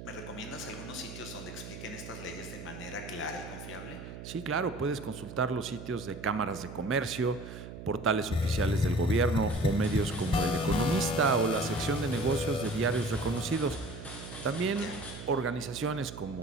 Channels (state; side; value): noise; right; hum, 11 dB below the sound